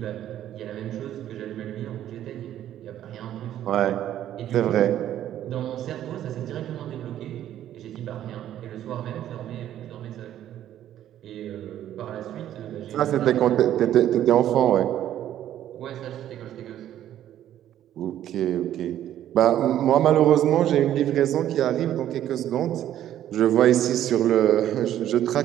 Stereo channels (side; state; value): left; quieter; 11.7 dB